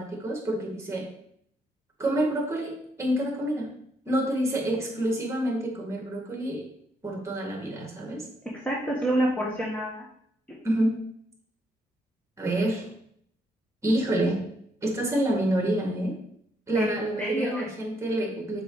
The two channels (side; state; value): both; normal; correlation 0.75